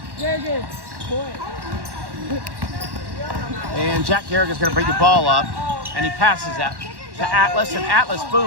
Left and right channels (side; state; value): left; late; 1.1 ms